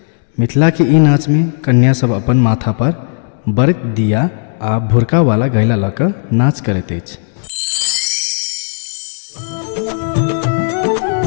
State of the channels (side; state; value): right; silent; digital silence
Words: मिथिला के ई नाच में कन्या सब अपन माथा पर बरक दिया आ भुरका वाला गैला लऽ कऽ नाच करैत अछि।